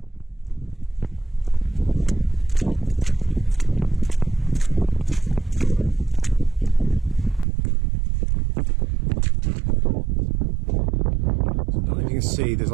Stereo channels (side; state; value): left; drops out; at 7.5 s